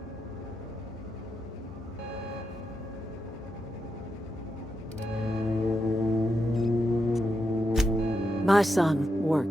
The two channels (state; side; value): normal; both; correlation 0.84